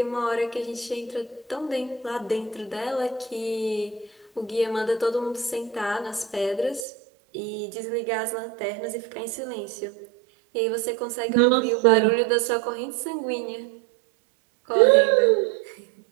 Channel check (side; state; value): left; drops out; at 6.9 s